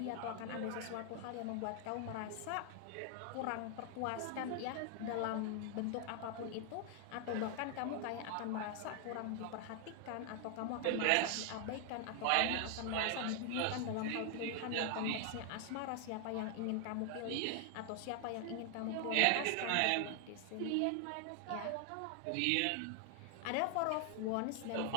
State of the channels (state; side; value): different; both; correlation 0.00